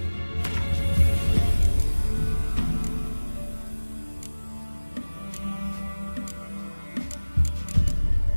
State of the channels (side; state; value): both; inverted; correlation -1.00